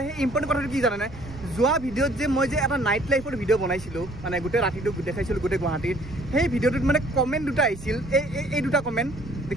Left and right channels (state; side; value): noise; right; rumble, 15 dB below the sound